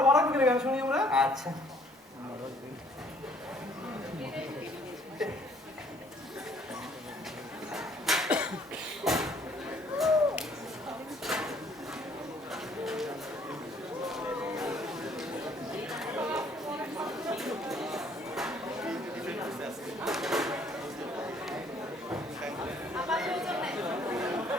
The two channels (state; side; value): normal; both; correlation 0.61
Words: বড় চোখের গান শুনি আমরা। আচ্ছা